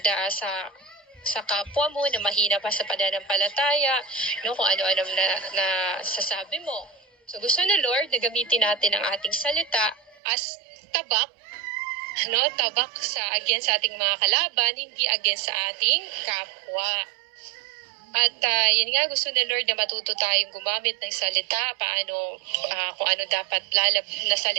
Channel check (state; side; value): drops out; left; at 10.2 s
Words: sa kapwa mo, na mahina pa sa pananampalataya, no, kung ano-ano na sasabi mo. So gusto na Lord na gamitin natin ang ating salita as tabak, no, tabak against sa ating mga kalaban, hindi against sa ating kapwa. At yun nga, gusto na Lord na matuto tayong gumamit ng salita, paano, kung ano dapat na